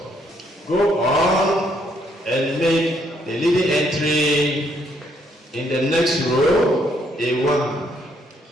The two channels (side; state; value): both; normal; correlation 0.71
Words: Go on and make the leading entry in the next row a 1.